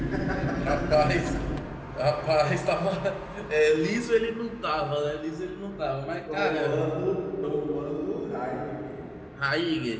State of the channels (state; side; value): identical; both; correlation 1.00